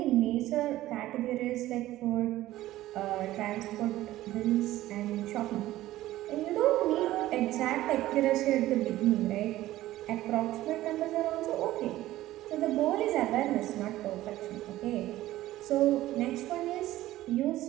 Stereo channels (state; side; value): quieter; left; 15.4 dB